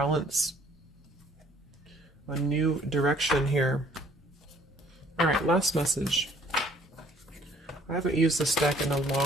A new direction here. All right, last message. I haven't used this deck in a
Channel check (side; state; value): both; normal; correlation 0.59